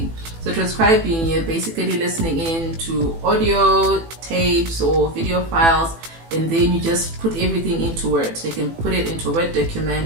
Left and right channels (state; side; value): late; left; 18 ms